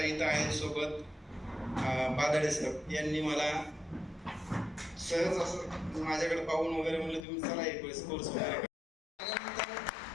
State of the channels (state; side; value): drops out; right; at 7.2 s